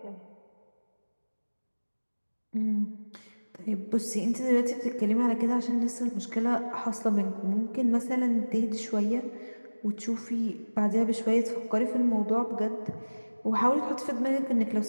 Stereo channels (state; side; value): inverted; both; correlation -1.00